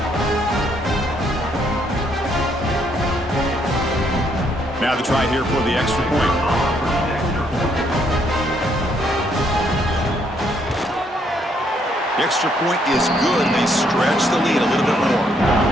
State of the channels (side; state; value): both; normal; correlation 0.71